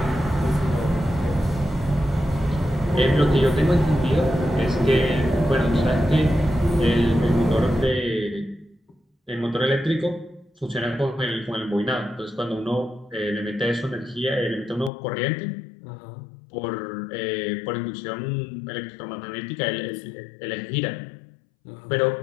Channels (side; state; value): right; drops out; at 14.9 s